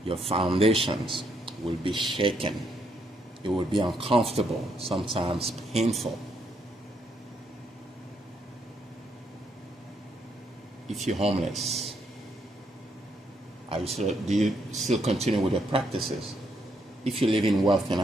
your foundations will be shaken. It will be uncomfortable, sometimes painful. If you're homeless, do you still continue with your practices? If you live in wealth and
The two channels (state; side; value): normal; both; correlation 0.75